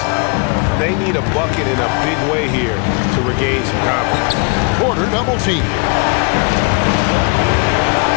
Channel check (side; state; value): right; quieter; 33.5 dB